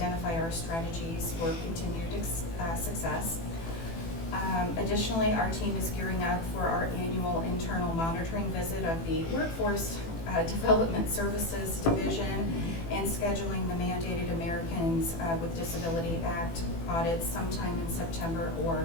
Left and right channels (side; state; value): right; late; 18 ms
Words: our strategies for continued success. Additionally, our team is gearing up for our annual internal monitoring visit of the workforce Development Services Division and scheduling the mandated Americans with Disability Act audits sometime in September